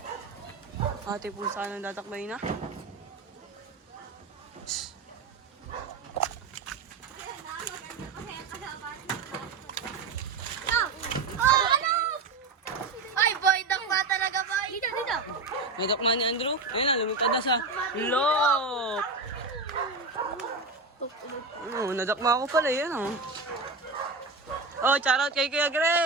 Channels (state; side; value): quieter; left; 3.9 dB